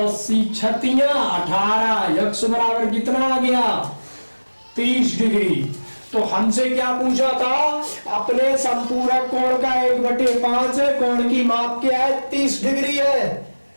छतियां 18, x बराबर कितना आ गया 30 डिग्री। तो हमसे क्या पूछा था, अपने संपूरक कोण का 1/5 है, कोण की माप क्या है 30 डिग्री है।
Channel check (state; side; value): inverted; both; correlation -1.00